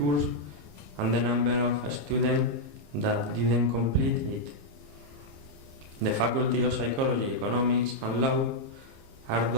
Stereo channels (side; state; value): left; late; 27 ms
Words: and the number of students that didn't complete it. The Faculty of Psychology, Economics and Law are